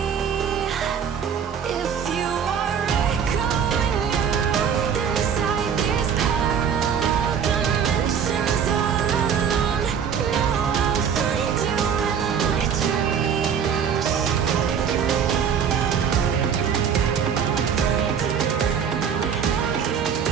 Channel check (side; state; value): left; quieter; 7.5 dB